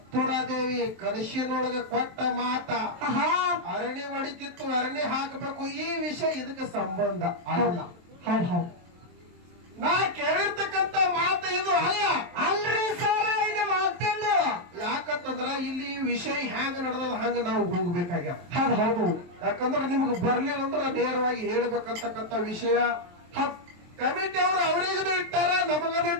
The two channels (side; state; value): left; late; 23 ms